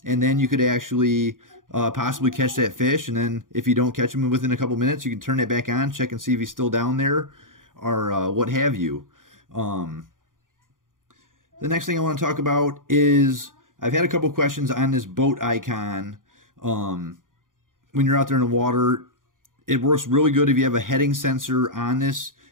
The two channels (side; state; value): left; late; 0.89 ms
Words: and then you could actually possibly catch that fish, and then if you don't catch him within a couple minutes, you can turn that back on, check and see if he's still down there, or what have you. The next thing I want to talk about is I've had a couple questions on this boat icon. When you're out there in the water, it works really good if you have a heading sensor on this